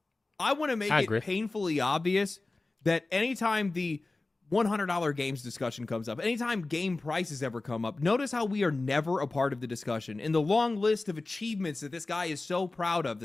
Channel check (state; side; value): quieter; right; 3.2 dB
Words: I want to make it painfully obvious that anytime the $100 games discussion comes up, anytime game prices ever come up, notice how we are never a part of the discussion. In the long list of achievements that this guy is so proud of, the